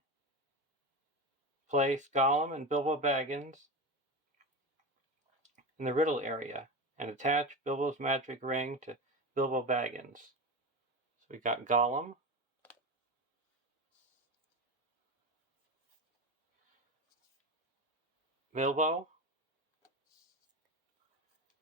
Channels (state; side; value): normal; both; correlation 0.22